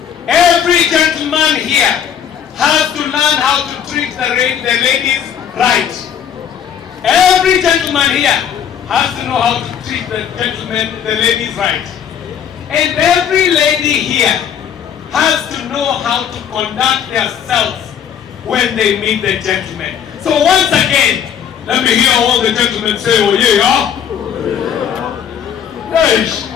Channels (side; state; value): right; quieter; 8.6 dB